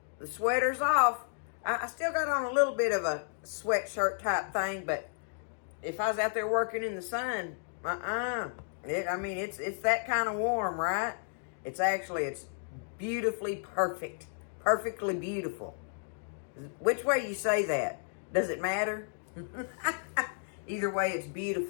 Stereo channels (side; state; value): right; silent; digital silence